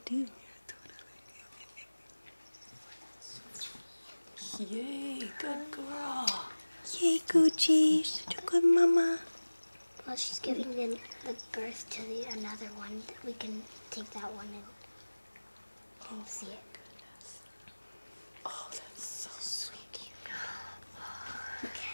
Yay, good girl. Yay, Gucci. Such a good mama. Well, she's giving the birth to another one. We can take that one and see it. Oh, that's so sweet.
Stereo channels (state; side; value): inverted; both; correlation -1.00